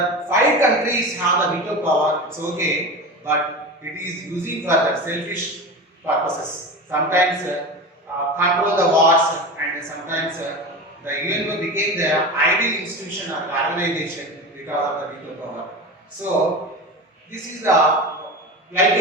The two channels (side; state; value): both; normal; correlation 0.27